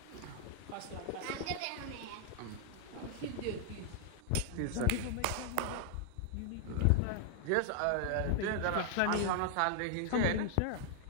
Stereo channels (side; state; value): both; different; correlation 0.00